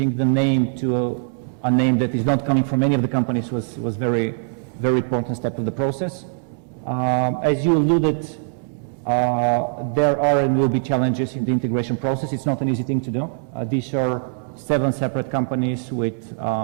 the name to a name that is not coming from any of the companies was very very important step of the process. As you alluded, there are and will be challenges in the integration process. It's not an easy thing to do. These are 7 separate companies with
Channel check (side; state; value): left; silent; digital silence